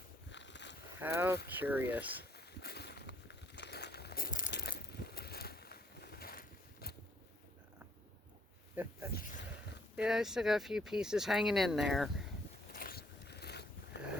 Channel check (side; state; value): both; normal; correlation 0.67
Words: How curious. Yeah, I still got a few pieces hanging in there.